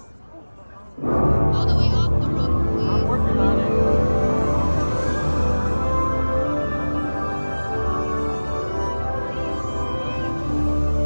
All the way off the rope, please. I'm working on it.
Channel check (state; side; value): inverted; both; correlation -1.00